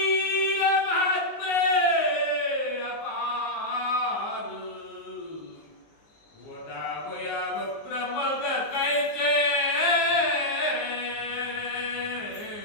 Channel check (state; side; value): late; right; 19 ms